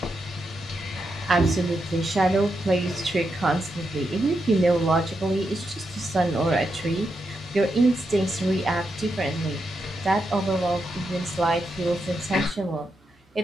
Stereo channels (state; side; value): normal; both; correlation 0.84